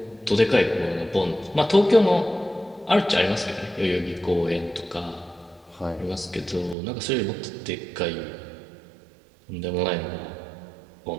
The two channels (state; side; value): drops out; left; at 6.8 s